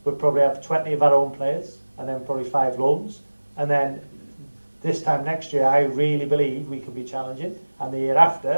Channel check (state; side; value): inverted; both; correlation -1.00